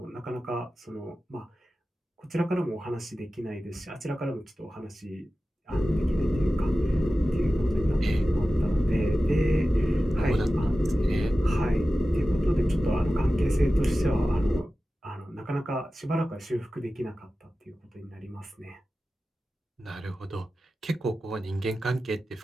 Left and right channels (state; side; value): normal; both; correlation 0.95